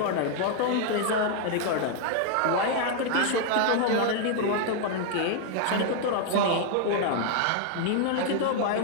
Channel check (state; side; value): different; both; correlation 0.00